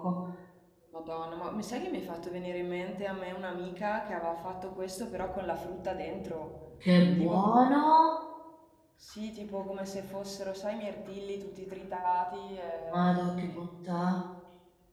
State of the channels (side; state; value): both; identical; correlation 1.00